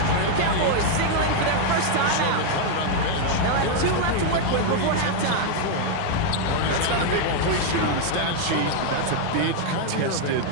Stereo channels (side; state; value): both; different; correlation 0.00